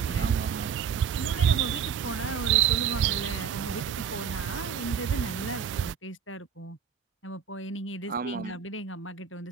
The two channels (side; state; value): left; quieter; 7.6 dB